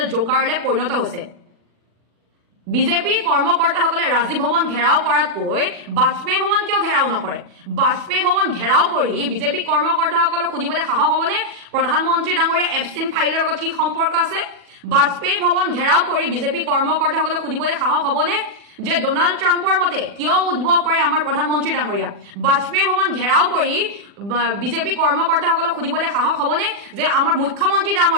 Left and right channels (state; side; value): late; left; 40 ms